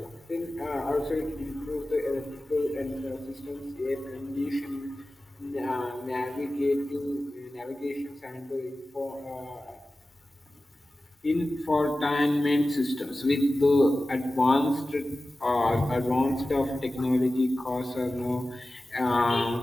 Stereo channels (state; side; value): normal; both; correlation 0.95